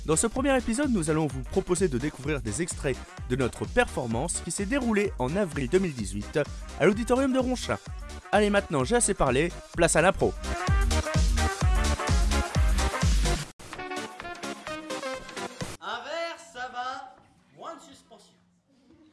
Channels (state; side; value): identical; both; correlation 1.00